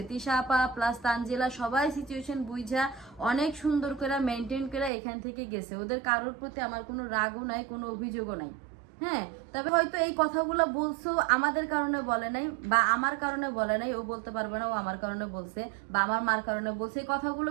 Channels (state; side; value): drops out; left; at 4.9 s